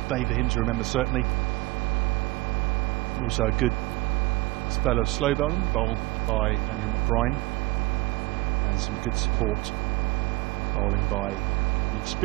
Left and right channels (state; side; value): quieter; left; 21.4 dB